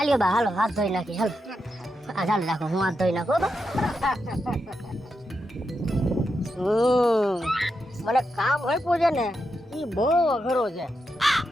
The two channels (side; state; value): both; normal; correlation 0.86